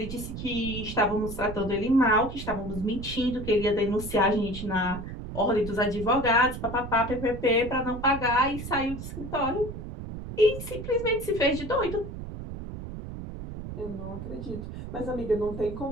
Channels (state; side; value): noise; right; rumble, 9 dB below the sound